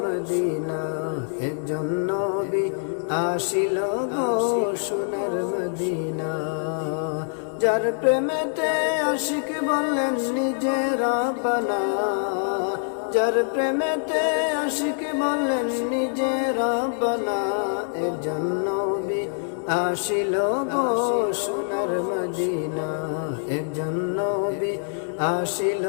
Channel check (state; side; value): silent; right; digital silence